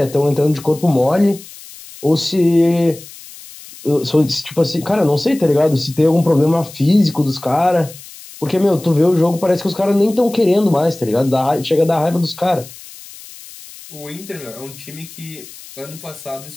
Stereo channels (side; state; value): left; noise; hiss, 18 dB below the sound